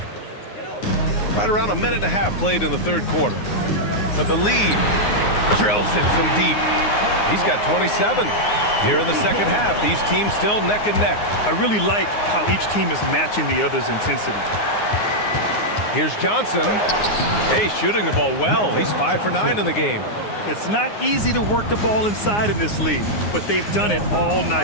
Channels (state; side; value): late; right; 9.6 ms